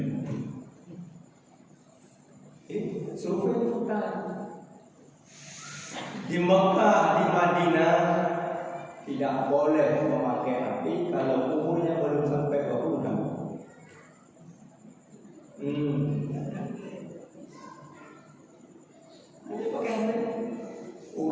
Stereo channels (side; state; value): both; identical; correlation 1.00